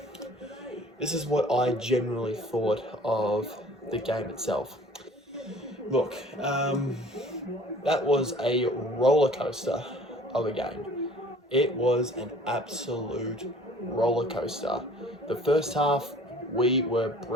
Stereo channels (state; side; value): normal; both; correlation 0.51